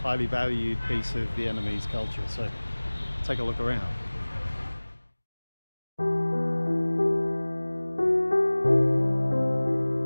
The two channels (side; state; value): both; inverted; correlation -1.00